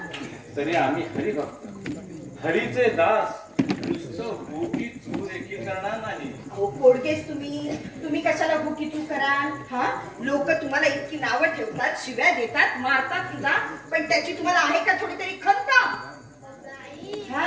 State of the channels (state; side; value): identical; both; correlation 1.00